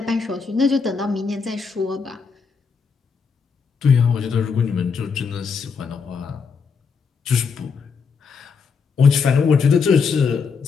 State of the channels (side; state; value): right; quieter; 5.5 dB